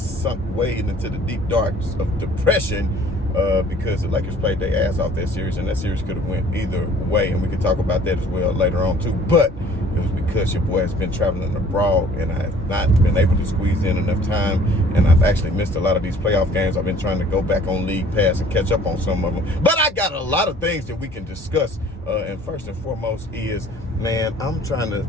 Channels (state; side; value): normal; both; correlation 0.53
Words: way into the deep darks of depression. Because the Lakers played their ass off that series, and that series could have went either way, and we can talk about that as well later on too. But it was because your boy has been traveling abroad, and I have not been able to squeeze in enough time, and I've actually missed a lot of these playoff games. I've been trying to go back on League Pass and catch up on some of them, but I got a lot of things that we can discuss. And first and foremost is, man, I'm trying